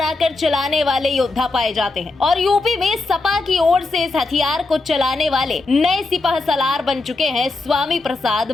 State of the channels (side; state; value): right; quieter; 3.2 dB